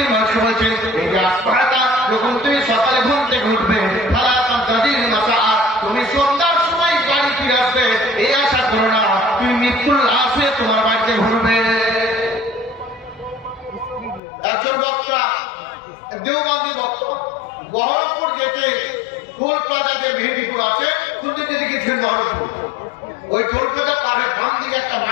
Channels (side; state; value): right; drops out; at 14.2 s